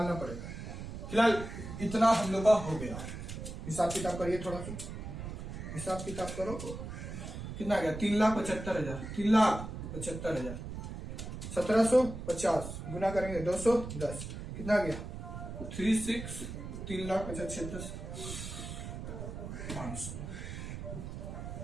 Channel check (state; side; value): noise; right; rumble, 8 dB below the sound